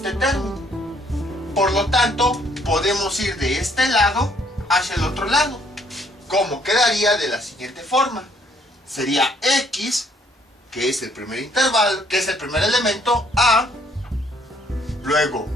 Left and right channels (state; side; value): normal; both; correlation 0.65